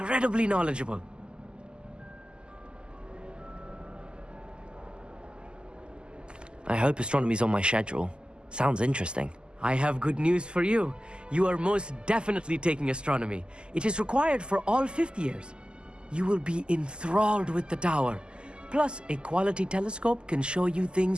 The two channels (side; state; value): left; late; 0.049 ms